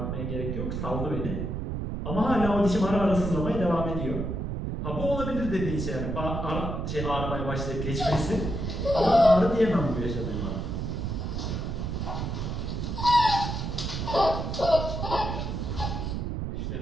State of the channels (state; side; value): noise; right; rumble, 3 dB below the sound